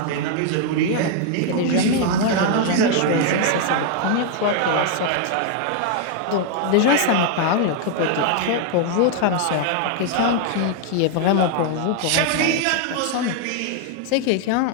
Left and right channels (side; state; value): both; different; correlation 0.00